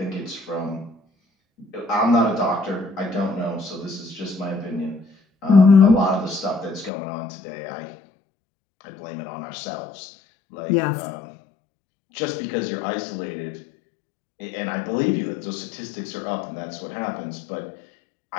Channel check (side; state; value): right; drops out; at 6.9 s